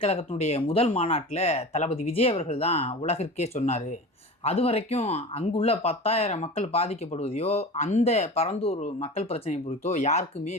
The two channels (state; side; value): normal; both; correlation 0.33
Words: கழகத்தினுடைய முதல் மாநாட்டில் தளபதி விஜய் அவர்கள் தான் உலகிற்கே சொன்னார். அது வரைக்கும் அங்குள்ள 10,000 மக்கள் பாதிக்கப்படுவதையோ அந்த பரந்தூர் மக்கள் பிரச்சனை குறித்தோ யாருக்குமே